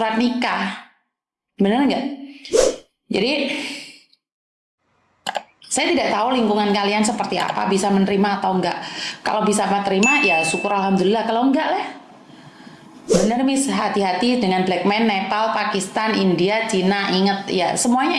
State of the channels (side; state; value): both; identical; correlation 1.00